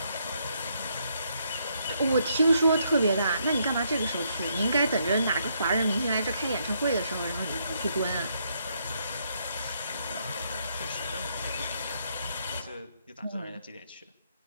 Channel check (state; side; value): inverted; both; correlation -0.74